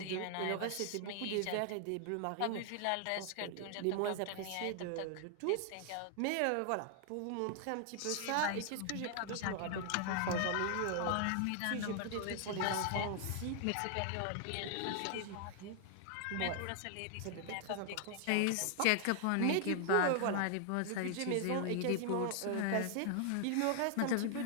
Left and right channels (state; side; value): different; both; correlation 0.00